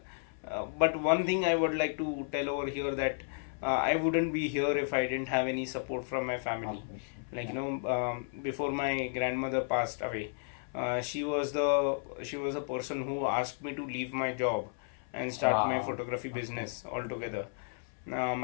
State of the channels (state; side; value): silent; right; 56 dB below the other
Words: but one thing I would like to tell over here that I wouldn't be here if I didn't have any support from my family. Before my grandmother passed away, she was a person who asked me to leave my job and start my photography business altogether.